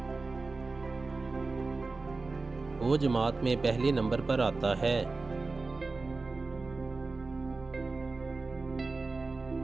वो जमात में पहले नंबर पर आता है।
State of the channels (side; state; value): left; quieter; 3.7 dB